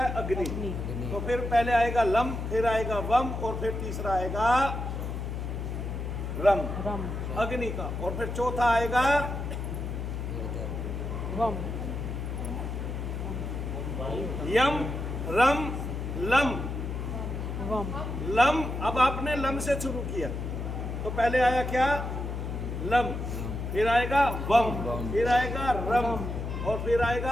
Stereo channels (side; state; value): left; noise; hum, 4 dB below the sound